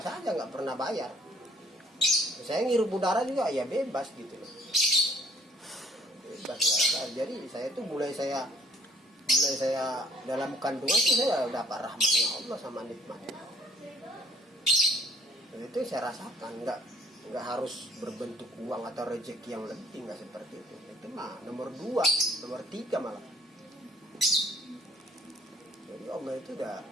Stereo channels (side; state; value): both; normal; correlation 0.59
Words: aja, nggak pernah bayar. Saya ngirup udara juga ya bebas gitu loh, bebas ya. Jadi saya tuh mulai saya dalam kandungan tuh saya dapat rahmatnya Allah sama nikmatnya. Dan itu saya rasakan, nggak harus berbentuk uang atau rezeki yang lebih, nggak seperti itu. Itu mah nomor 2, nomor 3 malah. Jadi Allah itu udah